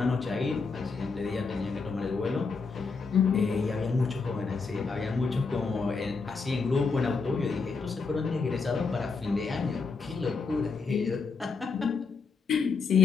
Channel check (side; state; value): right; quieter; 4.7 dB